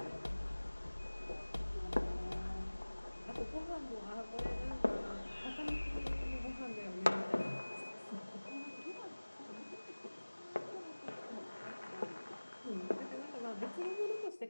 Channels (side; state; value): both; inverted; correlation -1.00